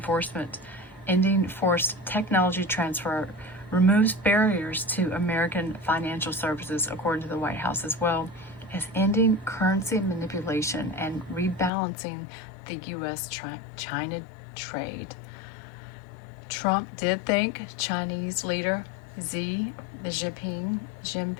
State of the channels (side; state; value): right; drops out; at 11.7 s